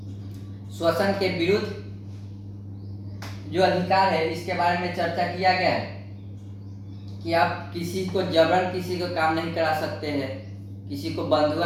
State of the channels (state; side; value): identical; both; correlation 1.00